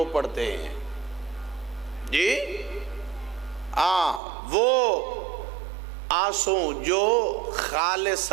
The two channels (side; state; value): left; drops out; at 4.2 s